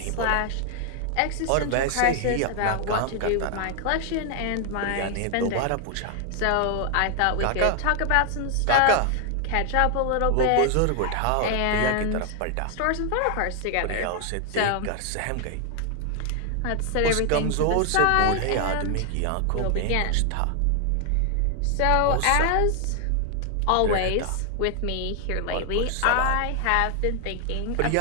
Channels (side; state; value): both; different; correlation 0.00